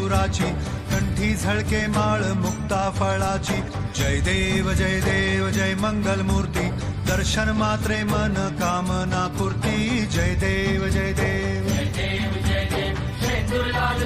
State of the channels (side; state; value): both; identical; correlation 1.00